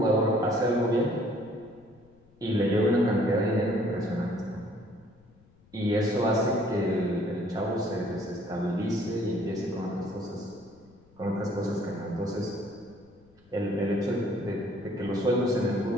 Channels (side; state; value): left; noise; rumble, 29 dB below the sound